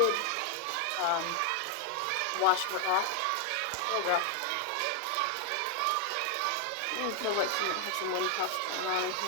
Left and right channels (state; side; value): different; both; correlation 0.00